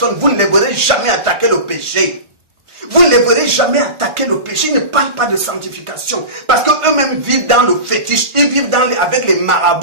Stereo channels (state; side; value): late; left; 1.5 ms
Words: vous ne les verrez jamais attaquer le péché. Vous ne les verrez jamais attaquer le péché. Ils ne parlent pas de sanctification. Parce qu'eux-mêmes vivent dans le fétiche. Ils vivent avec les